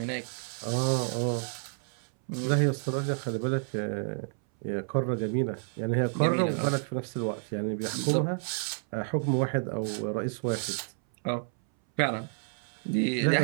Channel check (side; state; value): left; silent; 58 dB below the other